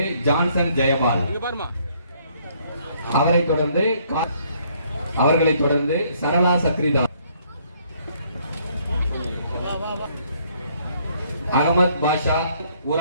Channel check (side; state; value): both; inverted; correlation -0.66